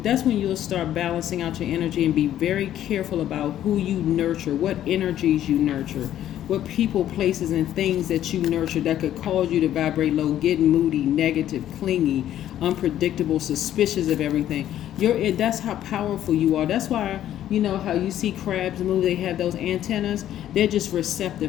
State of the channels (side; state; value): right; quieter; 11.8 dB